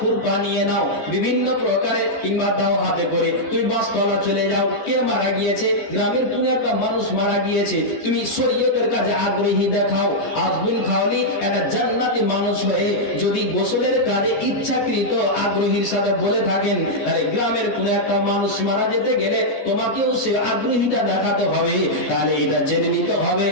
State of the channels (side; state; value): right; late; 14 ms